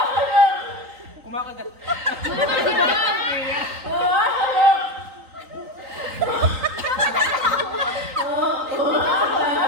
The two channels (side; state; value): left; late; 3.9 ms